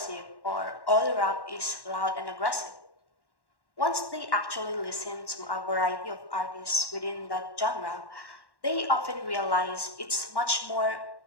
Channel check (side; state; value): right; late; 1.1 ms